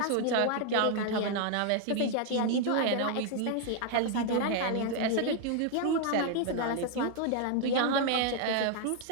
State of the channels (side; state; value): both; different; correlation 0.00